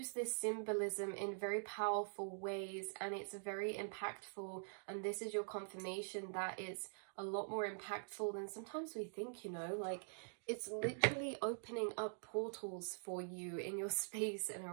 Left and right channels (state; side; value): silent; left; digital silence